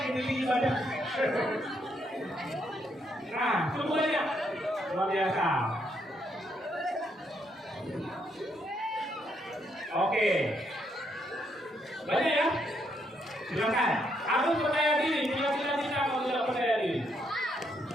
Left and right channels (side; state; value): both; normal; correlation 0.75